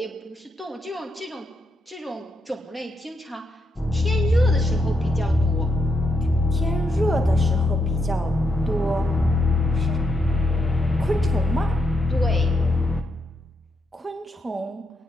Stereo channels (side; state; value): both; normal; correlation 0.81